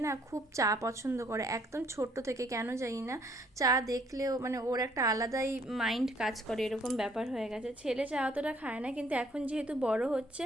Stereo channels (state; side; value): normal; both; correlation 0.64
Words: না খুব চা পছন্দ করে, একদম ছোট্ট থেকে, কেন জানি না চা দেখলেও মানে ওর একটা আলাদাই মাইন্ড কাজ করে, এরকম ব্যাপার হয়ে গেছে। ছেলে চা অতটা খায় না, কিন্তু এখন যেহেতু বড় হচ্ছে,